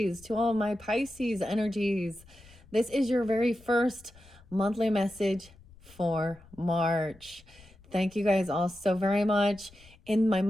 to all my Pisces energies. This is your very first monthly message for March. Thank you guys all so very much. In my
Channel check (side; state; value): left; noise; rumble, 25 dB below the sound